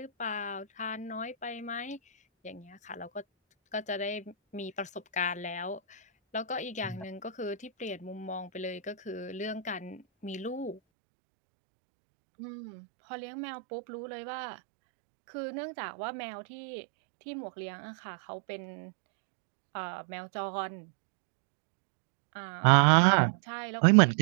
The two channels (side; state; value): left; drops out; at 10.8 s